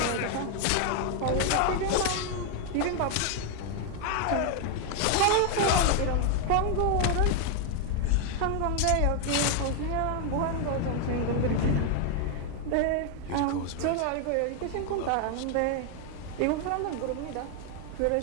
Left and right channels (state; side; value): different; both; correlation 0.01